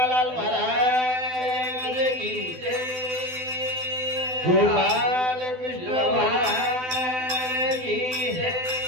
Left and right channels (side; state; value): left; late; 12 ms